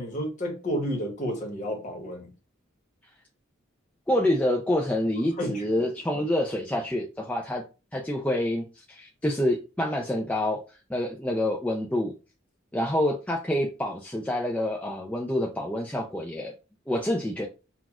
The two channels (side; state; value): both; normal; correlation 0.74